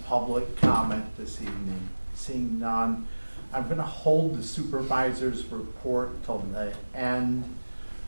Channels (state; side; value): inverted; both; correlation -1.00